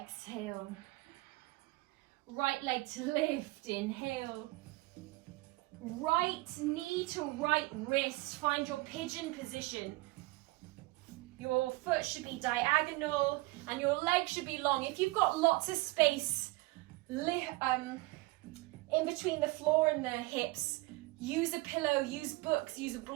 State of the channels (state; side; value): quieter; left; 21.9 dB